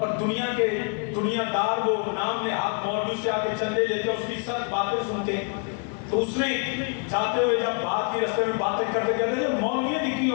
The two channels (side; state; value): right; quieter; 38.5 dB